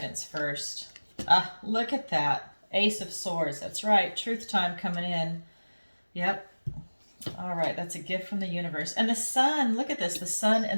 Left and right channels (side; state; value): both; inverted; correlation -1.00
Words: first. Look at that. Ace of Swords. That's right. Truth time coming in. Yep. All right, that's a gift from the universe. And the sun, look at this, the sun